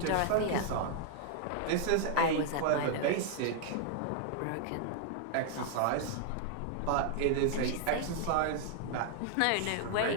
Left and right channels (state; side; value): different; both; correlation 0.00